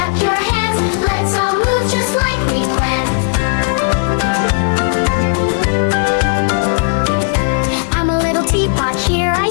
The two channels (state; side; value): silent; right; 70 dB below the other